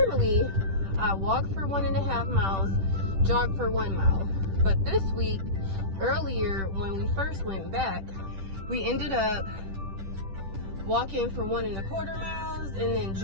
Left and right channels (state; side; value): late; left; 10 ms